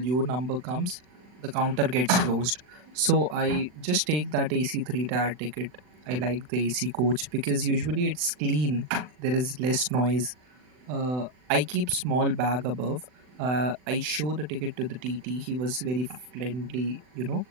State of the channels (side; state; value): left; late; 40 ms